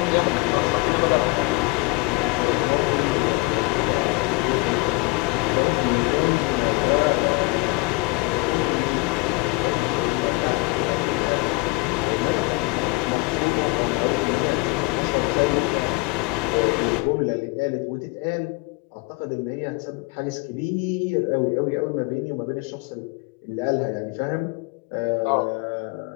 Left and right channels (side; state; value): right; quieter; 25.0 dB